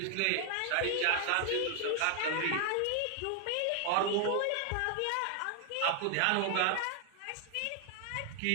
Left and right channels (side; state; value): both; different; correlation 0.00